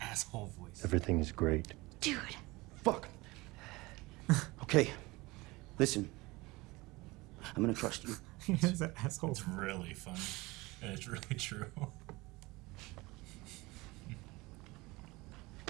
voice. Everything is great. Dude. Fuck. Okay, listen. I'm gonna trust you. He has an asshole. It's really funny. And it's really true.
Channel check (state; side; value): quieter; left; 22.2 dB